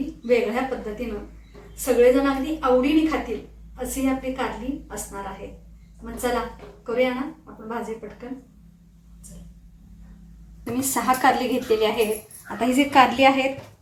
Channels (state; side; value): identical; both; correlation 1.00